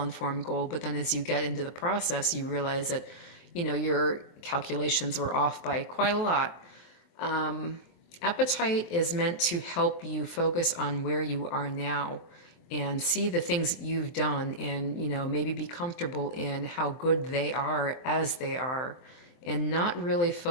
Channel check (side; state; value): right; late; 23 ms